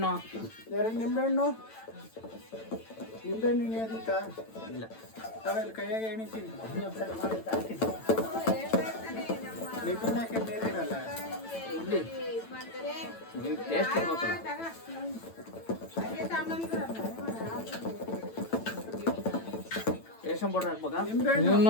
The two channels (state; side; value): late; right; 9.0 ms